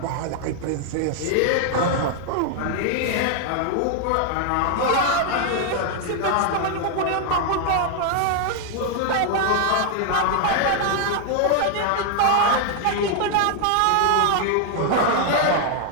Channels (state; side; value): different; both; correlation 0.00